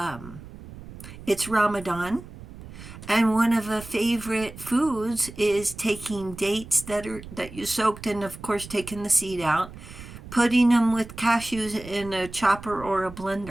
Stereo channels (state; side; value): noise; right; rumble, 15 dB below the sound